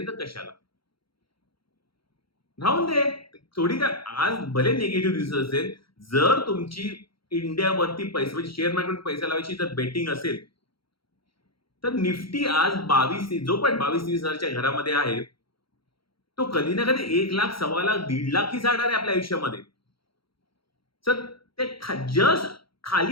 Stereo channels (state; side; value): late; right; 0.74 ms